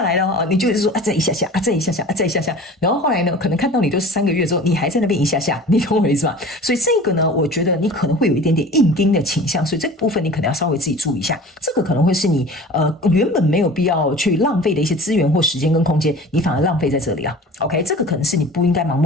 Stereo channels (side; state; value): both; normal; correlation 0.41